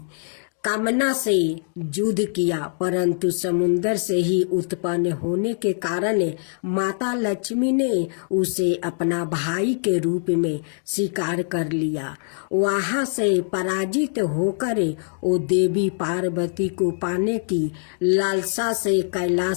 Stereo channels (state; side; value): silent; right; digital silence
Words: कामना से युद्ध किया, परंतु समुद्र से ही उत्पन्न होने के कारण माता लक्ष्मी ने उसे अपना भाई के रूप में स्वीकार कर लिया। वहां से पराजित होकर वो देवी पार्वती को पाने की लालसा से